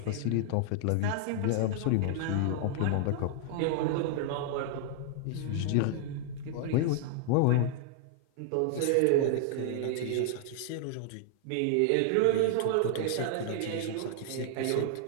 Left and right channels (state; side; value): different; both; correlation 0.00